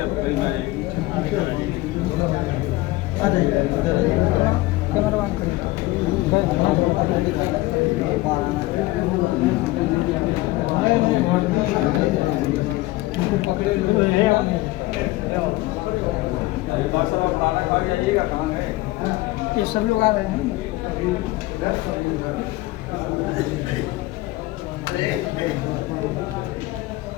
सभी लोग आ रहे हैं।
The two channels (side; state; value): right; quieter; 19.2 dB